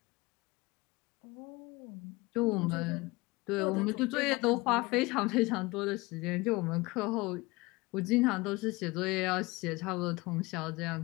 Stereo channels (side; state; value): right; quieter; 22.9 dB